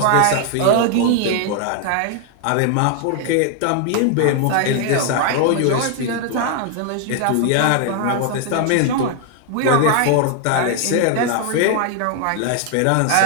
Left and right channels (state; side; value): different; both; correlation 0.00